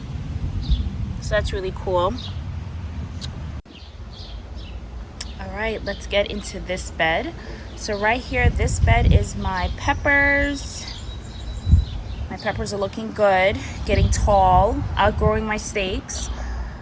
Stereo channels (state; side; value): identical; both; correlation 1.00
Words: So that's really cool. All right, let's get into this bed. So right here, this bed is my peppers. My peppers are looking good, getting tall, outgrowing my stakes.